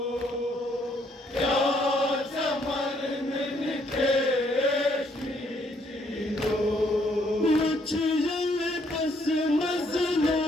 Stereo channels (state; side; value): normal; both; correlation 0.69